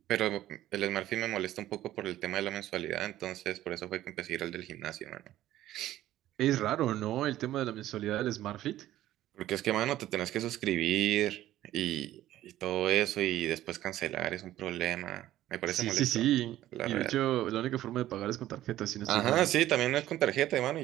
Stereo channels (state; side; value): quieter; left; 13.8 dB